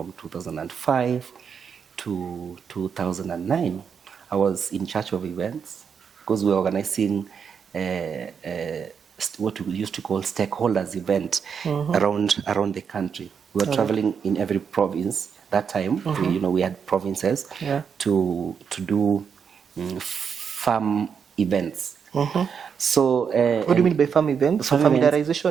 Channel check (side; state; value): left; quieter; 6.8 dB